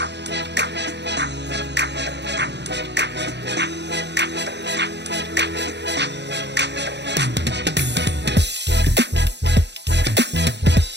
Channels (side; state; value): left; late; 0.50 ms